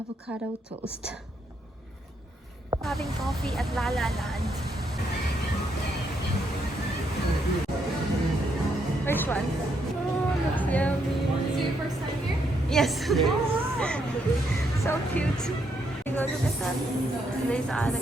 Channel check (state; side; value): normal; both; correlation 0.76